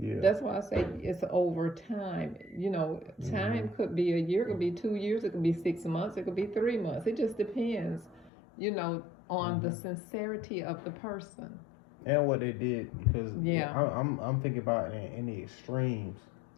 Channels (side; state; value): right; drops out; at 8.3 s